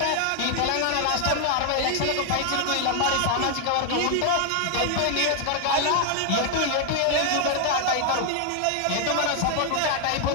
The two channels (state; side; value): different; both; correlation 0.00